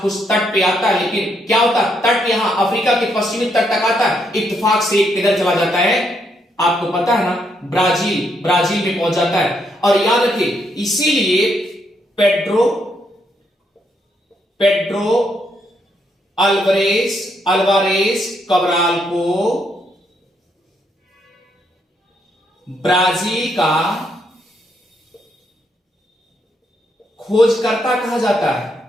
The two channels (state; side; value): normal; both; correlation 0.76